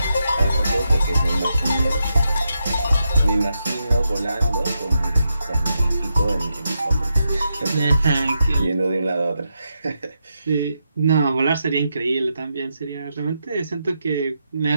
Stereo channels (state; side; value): inverted; both; correlation -0.84